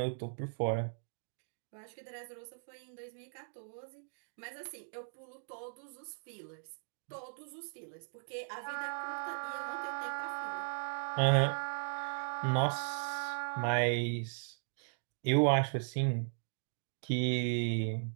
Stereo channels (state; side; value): silent; left; digital silence